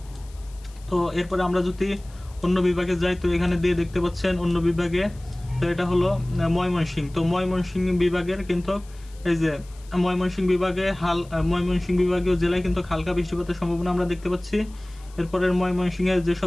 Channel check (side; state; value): left; noise; hiss, 26 dB below the sound